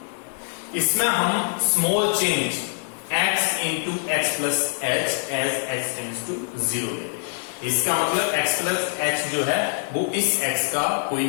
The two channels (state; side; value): silent; right; 63 dB below the other